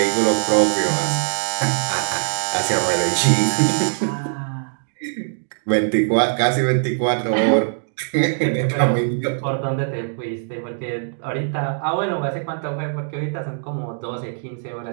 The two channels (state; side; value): silent; left; digital silence